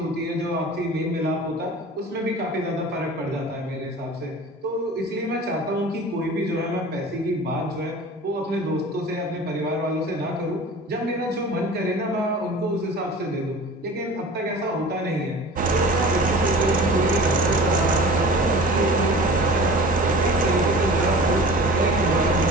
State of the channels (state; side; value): normal; both; correlation 0.40